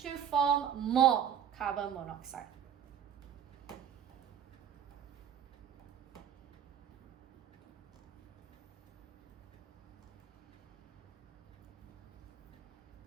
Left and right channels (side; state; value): left; quieter; 9.0 dB